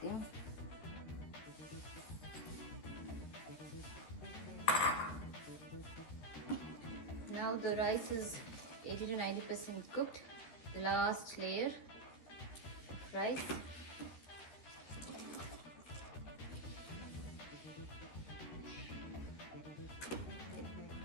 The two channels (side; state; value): right; late; 13 ms